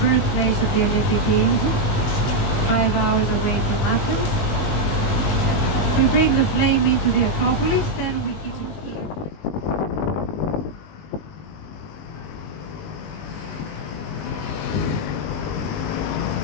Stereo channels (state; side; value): late; right; 19 ms